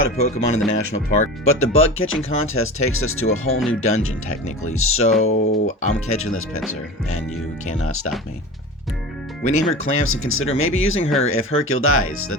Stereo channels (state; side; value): normal; both; correlation 0.32